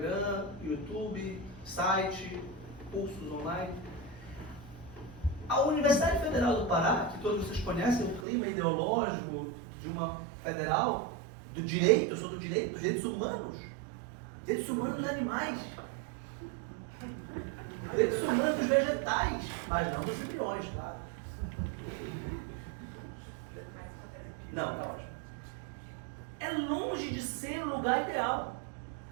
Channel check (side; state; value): left; drops out; at 8.2 s